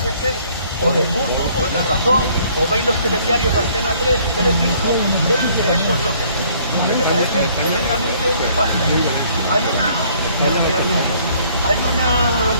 o del Mundo, o de La Razón, o veis los telediarios de Antena 3 y Telecinco, veis que eso es lo que me parece tremendamente nefasto. Hay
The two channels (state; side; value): inverted; both; correlation -0.61